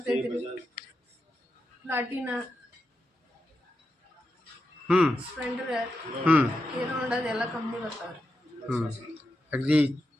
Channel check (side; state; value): both; normal; correlation 0.87